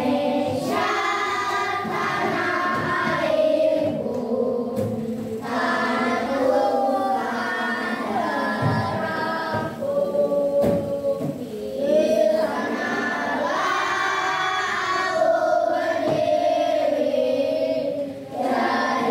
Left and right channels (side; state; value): both; identical; correlation 1.00